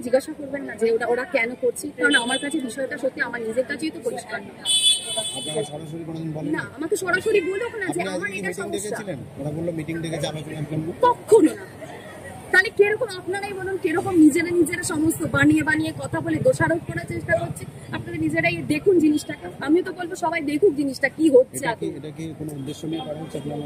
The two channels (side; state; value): both; identical; correlation 1.00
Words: জিজ্ঞাসা করবেন না যে ওরা কেন করছে? কারণ আমার কাছে বিষয়টা সত্যি আমার নিজের কাছেই তো পরিষ্কার না। আমাকে সরাসরি বলো না যে আমার এটা সমস্যা, কখনো না। তাহলে কিরকম আপনারাই বলুন, কিরকম নিজেরা সমস্ত বানিয়ে কথা বলে দোষারোপ করার চেষ্টা করছে। আপনারা নিজেরাই দেখুন জিনিসটাকে। আমি তো বলবো সবাই দেখুক জিনিসটা কি হচ্ছে।